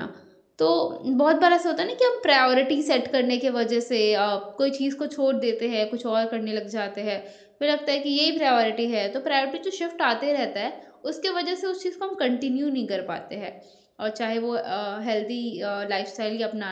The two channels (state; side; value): identical; both; correlation 1.00